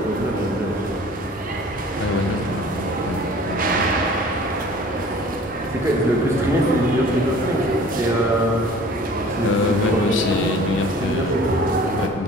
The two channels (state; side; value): normal; both; correlation 0.47